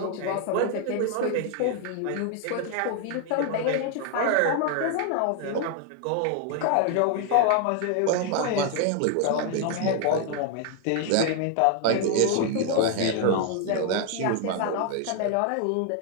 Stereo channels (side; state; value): both; different; correlation 0.00